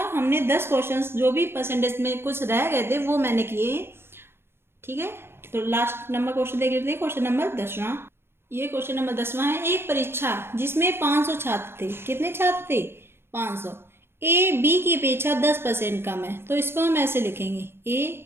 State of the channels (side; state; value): left; late; 0.11 ms